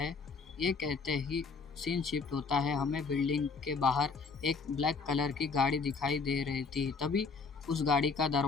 ये कहते ही सीन शिफ्ट होता है। हमें बिल्डिंग के बाहर एक ब्लैक कलर की गाड़ी दिखाई दे रही थी। तभी उस गाड़ी का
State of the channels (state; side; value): quieter; right; 4.7 dB